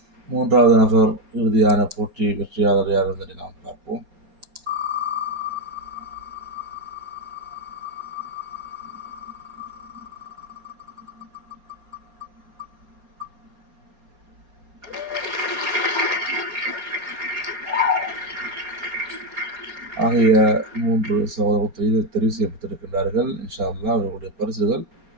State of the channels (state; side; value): late; left; 4.3 ms